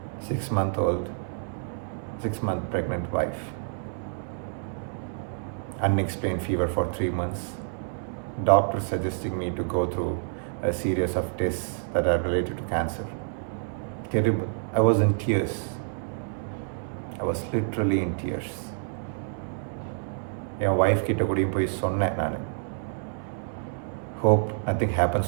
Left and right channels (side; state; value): left; silent; 59 dB below the other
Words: 6-month-old, 6-month pregnant wife, unexplained fever for 3 months, doctor suggesting me to go through a series of tests that are related to cancer. Terrible. I was in tears. I was literally in tears. N wife கிட்ட கூடயும் போய் சொன்னேன் நான், hope nothing happens